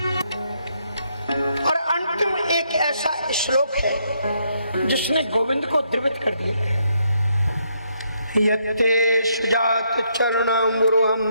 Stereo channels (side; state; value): both; inverted; correlation -0.74